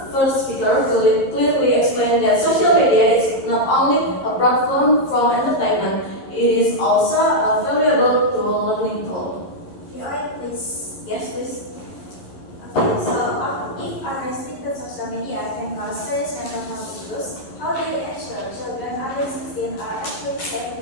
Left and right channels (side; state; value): right; late; 11 ms